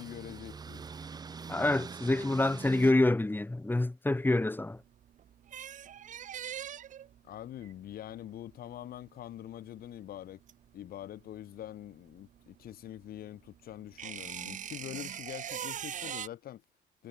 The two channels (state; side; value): normal; both; correlation 0.85